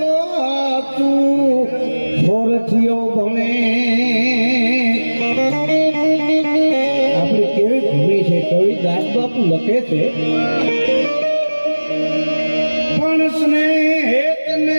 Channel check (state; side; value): inverted; both; correlation -1.00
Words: તું હોરથીઓ ભણે. આપણી કેવી ભૂમિ છે કવિ દાસ બાપુ લખે છે, પણ સ્નેહ